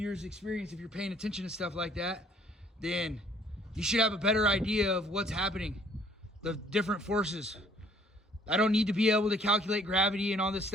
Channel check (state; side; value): normal; both; correlation 0.59